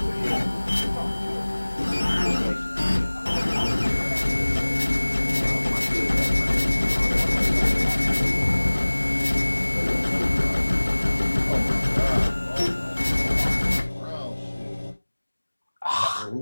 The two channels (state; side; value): inverted; both; correlation -1.00